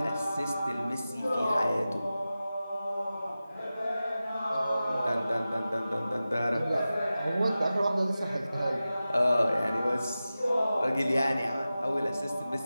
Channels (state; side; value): inverted; both; correlation -0.94